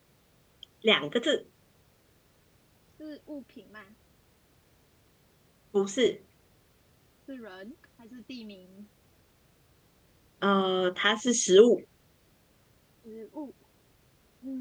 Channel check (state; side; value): identical; both; correlation 1.00